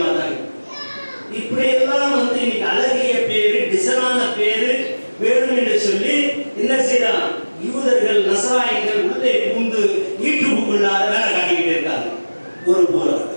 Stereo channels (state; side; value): inverted; both; correlation -1.00